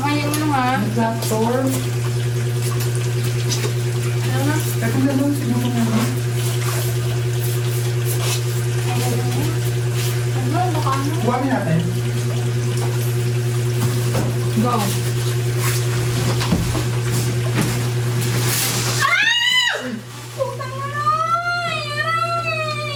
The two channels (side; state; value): both; identical; correlation 1.00